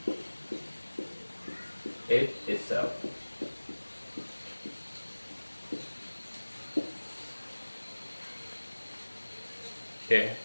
it, itself. Oke.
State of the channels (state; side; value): inverted; both; correlation -1.00